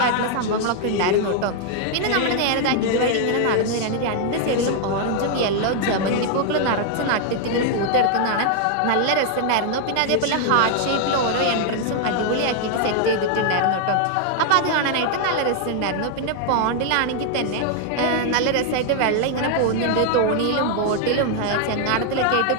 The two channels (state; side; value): different; both; correlation 0.00